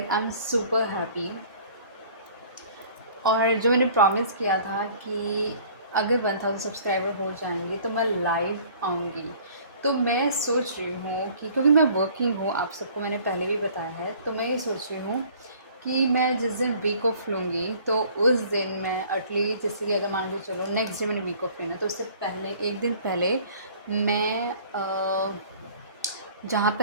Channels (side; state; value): both; inverted; correlation -0.52